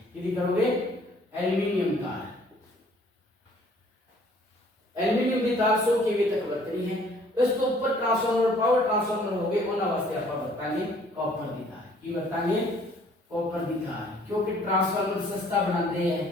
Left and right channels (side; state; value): both; normal; correlation 0.58